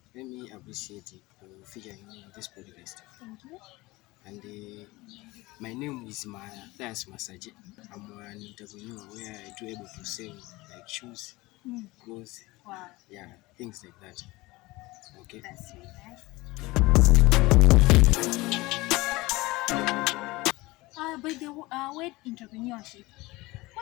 let me appreciate it for featuring me in this podcast. Thank you. And my name is Matheas Masache. I'm an entrepreneur where I do able to sell like shoes, clothes, Wow, things like that. Okay. that's really nice. By the word entrepreneurship,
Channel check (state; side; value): quieter; right; 21.1 dB